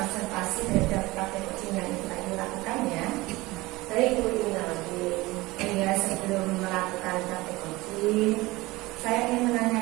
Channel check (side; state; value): left; quieter; 20.5 dB